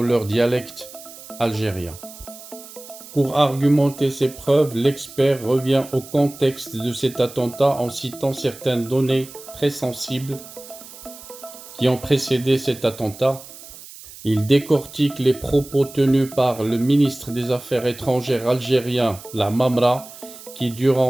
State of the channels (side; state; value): right; noise; hiss, 17 dB below the sound